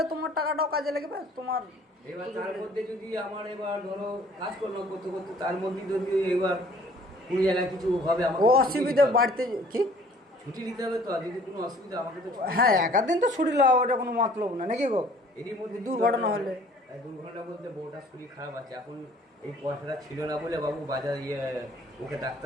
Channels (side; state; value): both; normal; correlation 0.55